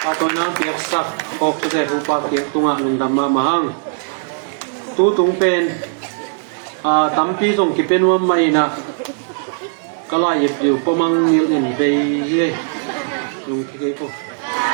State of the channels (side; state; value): left; silent; digital silence